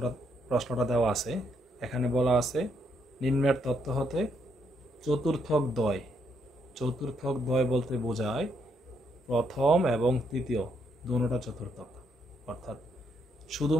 প্রশ্নটা দেওয়া আছে, এখানে বলা আছে নিম্নের তথ্য হতে চতুর্থক দ্বয়। চতুর্থক দ্বয় বলতে বোঝায় প্রথম এবং তৃতীয় দুটোটা চতুর্থক। অর্থাৎ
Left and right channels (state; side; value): normal; both; correlation 0.75